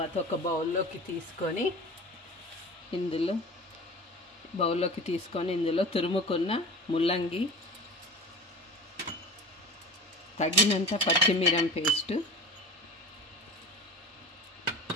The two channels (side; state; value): both; normal; correlation 0.35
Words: ఒక బౌల్లోకి తీసుకొని ఇందులో తురుముకున్న ముల్లంగి, తగినంత పచ్చిమిరం పేస్ట్,